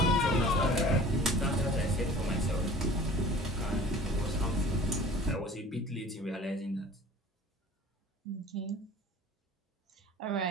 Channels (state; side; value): normal; both; correlation 0.44